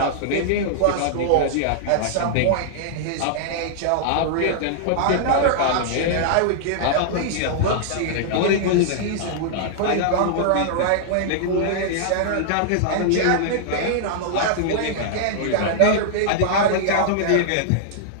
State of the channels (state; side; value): different; both; correlation -0.01